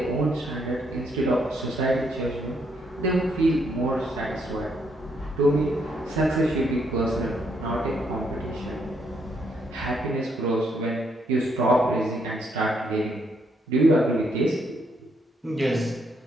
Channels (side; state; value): both; normal; correlation 0.74